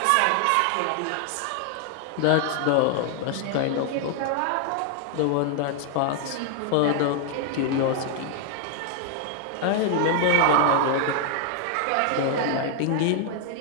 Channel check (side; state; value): both; different; correlation 0.00